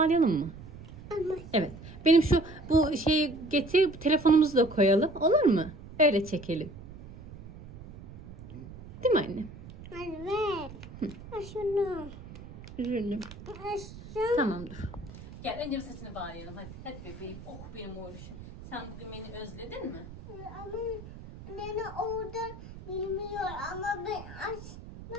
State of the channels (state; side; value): noise; right; rumble, 15 dB below the sound